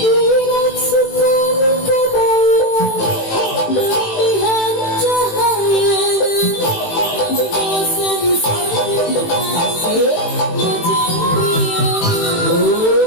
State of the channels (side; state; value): right; late; 18 ms